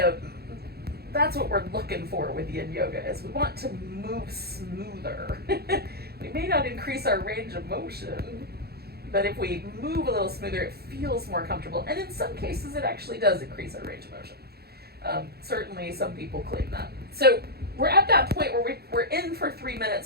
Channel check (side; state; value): left; late; 0.46 ms